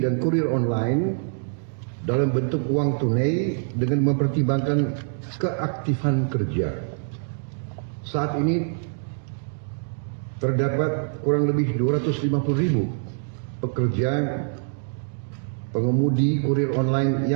dan kurir online dalam bentuk uang tunai dengan mempertimbangkan keaktifan kerja. Saat ini terdapat kurang lebih 250.000 pekerja pengemudi kurir online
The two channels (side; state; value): left; silent; digital silence